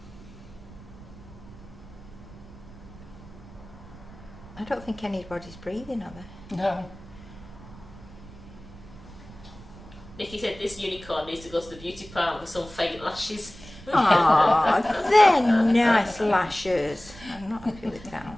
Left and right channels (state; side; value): noise; right; rumble, 18 dB below the sound